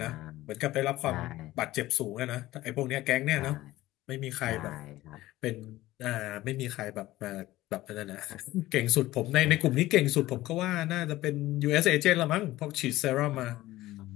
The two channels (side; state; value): right; quieter; 16.6 dB